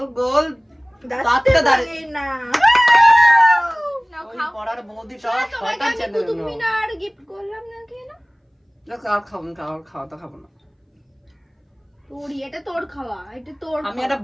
গোল দাঁতটা দাঁড়িয়ে না ওই খাও। পড়ার বৌদিটা তোমাকে আমি কুতুব মিনার গিফট করলাম না কেন? আর খাবো না, খাওয়া তো খাবো না। তোরই, এটা তোর খাওয়া, এটা তোর আমি খাওয়া। একটা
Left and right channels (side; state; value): both; identical; correlation 1.00